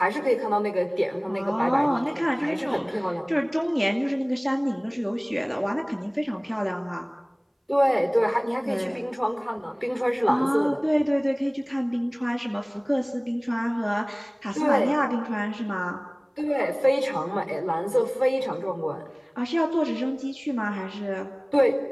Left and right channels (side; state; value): both; identical; correlation 1.00